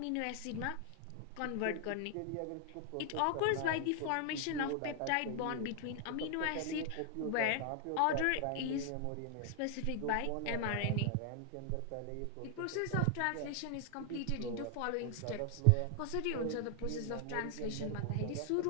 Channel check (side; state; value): both; different; correlation 0.00